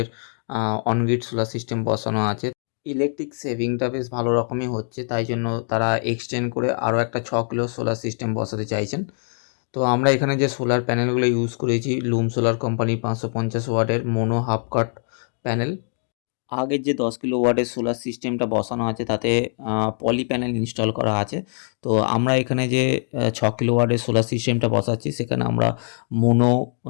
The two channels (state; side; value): silent; right; 63 dB below the other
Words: অনগ্রিড সোলার সিস্টেম বসানো আছে। ইলেকট্রিক সেভিংটা বেশ ভালো রকমই হচ্ছে, তাই জন্য তারা এক্সটেন্ড করে আরও একটা 6 কিলো সোলার সিস্টেম বসাতে চাইছেন। তো আমরা এখানে যে সোলার প্যানেলগুলো ইউজ করেছি, লুম সোলার কোম্পানি 550 ওয়াটের মোনো হাফ কাট প্যানেল। আগের যে 10 কিলোওয়াটের সোলার সিস্টেমটা বসানো আছে তাতে পলি প্যানেল ইনস্টল করা আছে। তো আমরা এখানে যে 6 কিলোওয়াটের সোলার সিস্টেমটা বসাচ্ছি সেখানে আমরা মোনো